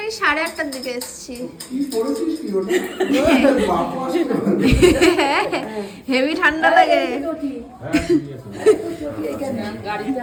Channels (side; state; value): both; identical; correlation 1.00